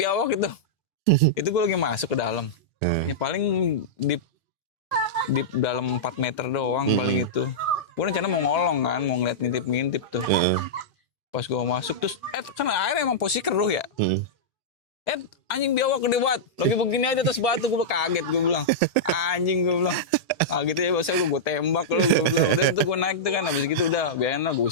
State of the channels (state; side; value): normal; both; correlation -0.10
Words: itu. Itu gua lagi masuk ke dalam. Ya paling di dalam 4 meter doang paling itu. Gue rencana mau ngolong kan, mau ngeliat ngintip-ngintip tuh. Pas gue masuk terus, kan air emang posisi keruh ya. Anjing biawak gede banget. Lagi begini aja terus batu, gue kaget gue bilang. Anjing gue bilang. Gitu ya bahasa gue tembak lo gue bilang. Udah itu gue naik tuh kan, habis gitu udah biarin lah gue